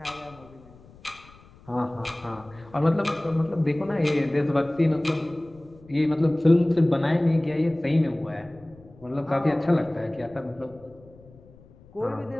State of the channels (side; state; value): left; noise; rumble, 24 dB below the sound